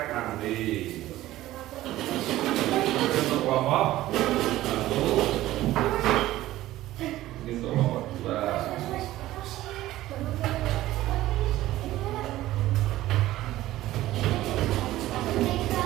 nanti. Untuk kelompok 1, ini untuk kelompok 2.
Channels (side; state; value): left; quieter; 15.5 dB